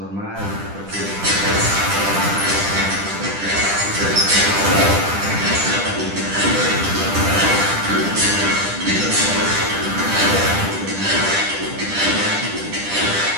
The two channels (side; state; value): left; late; 10 ms